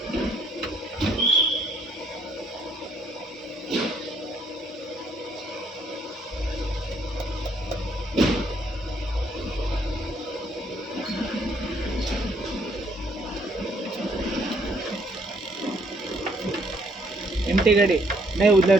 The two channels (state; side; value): normal; both; correlation 0.67